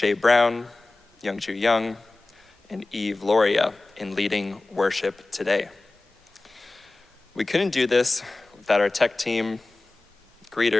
Brown, Youngju Young, and Eve Loria in leading worship today. We couldn't do this without our tech team,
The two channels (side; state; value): right; quieter; 3.1 dB